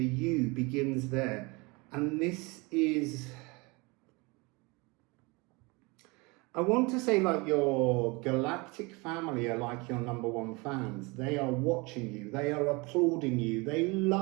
you begins there. And this is, I want to say, like, your galactic family are like your #1 fans. They are watching you, they are applauding you, they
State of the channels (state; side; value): quieter; left; 26.6 dB